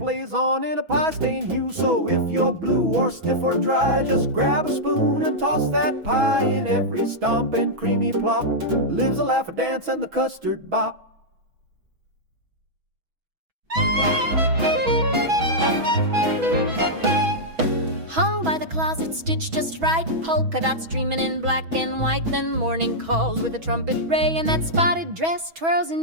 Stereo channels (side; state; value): left; late; 6.2 ms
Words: on in a pie-stained hue. So if you're blue or stiff or dry, just grab a spoon and toss that pie. In every stomp and creamy plop lives a laugh, a dance, and the custard bop. Hung by the closet, stitched just right, polka dots streaming in black and white. Then morning calls with a trumpet ray, and that spotted dress twirls